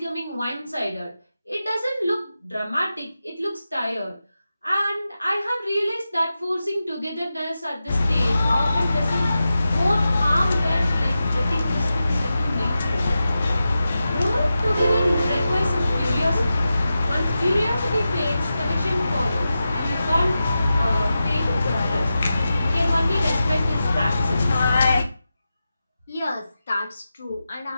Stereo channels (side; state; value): both; inverted; correlation -0.92